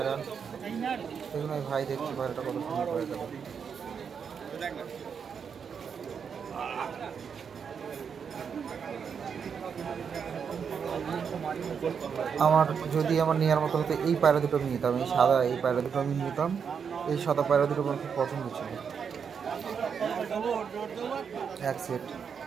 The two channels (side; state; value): left; quieter; 6.7 dB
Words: দেখুন, ওই ভাই দেখছি পায়রাটা কত সুন্দর পায়রাটা। আমার যদি আমার নেওয়ার মতো হতো এই পায়রা দুটো আমি নিতাম, এই সাদা এই পায়রা দুটো আমি নিতাম। এই সাদা পায়রা দুটো আমার খুব পছন্দ ছিল, এক সেট।